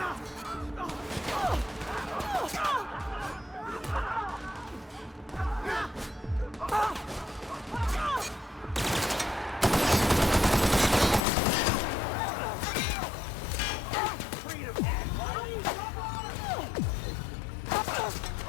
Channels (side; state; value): right; drops out; at 11.2 s